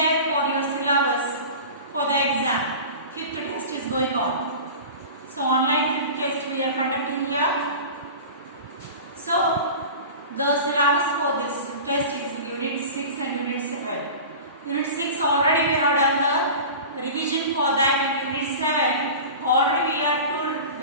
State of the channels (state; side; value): inverted; both; correlation -0.34